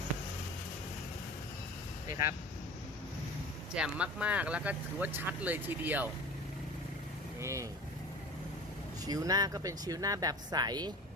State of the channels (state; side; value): normal; both; correlation 0.37